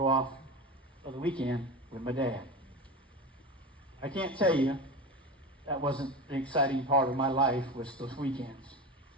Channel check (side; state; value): both; normal; correlation 0.25